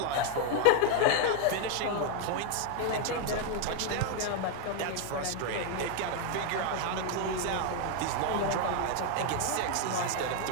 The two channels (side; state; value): both; different; correlation 0.00